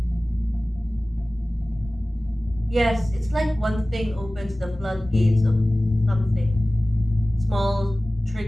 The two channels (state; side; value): normal; both; correlation 0.98